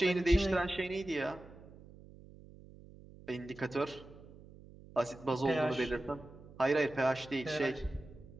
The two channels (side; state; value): right; noise; hum, 20 dB below the sound